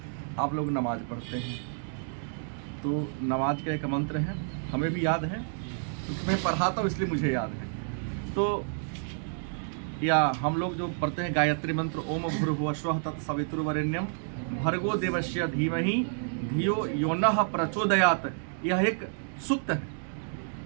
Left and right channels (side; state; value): left; silent; digital silence